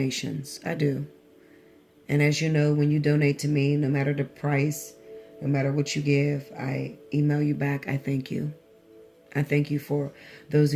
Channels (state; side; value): identical; both; correlation 1.00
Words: I do. And as you know, when you donate to me, no matter the price, no matter what you give, I email you back. I thank you. I thank you for those